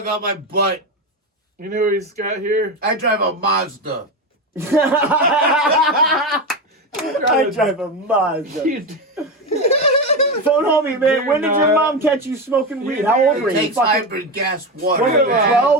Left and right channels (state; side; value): normal; both; correlation 0.16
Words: on my butt. You know who he's got here? I drive a Mazda. I drive a Mazda. You- Phone homie, man. You're When did your not- mom catch you smoking weed? How old were It you? takes Fucking hybrid gas water. what, Look at